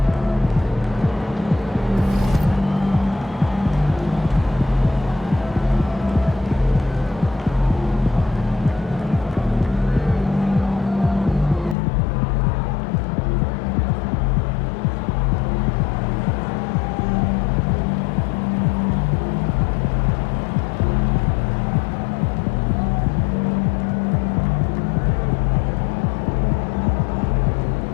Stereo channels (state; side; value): drops out; right; at 11.8 s